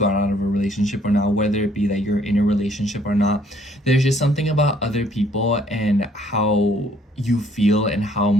out of a relationship or not, whether it be that you're in a relationship or not. There's just something about other people and how you feel and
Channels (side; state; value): both; normal; correlation 0.63